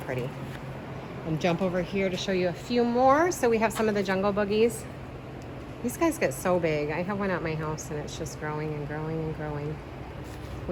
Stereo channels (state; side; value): identical; both; correlation 1.00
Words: pretty. And jump over here to show you a few more. So we have some of the jungle boogies. These guys get so big. I have one at my house and it's just growing and growing and growing.